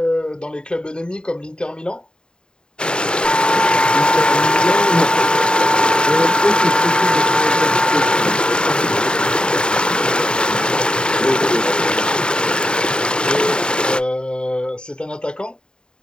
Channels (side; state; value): right; late; 0.049 ms